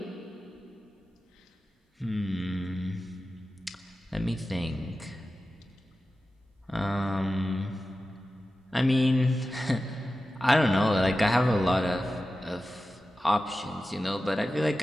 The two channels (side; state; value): both; normal; correlation 0.93